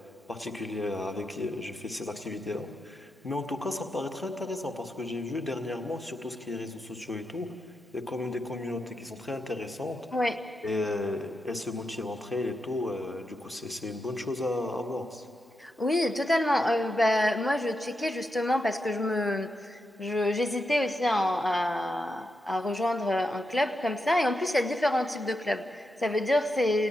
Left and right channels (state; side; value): normal; both; correlation 0.86